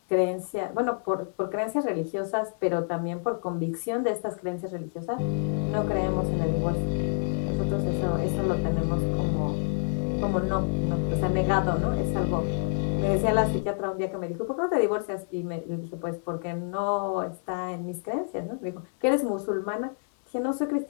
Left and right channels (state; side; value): silent; right; digital silence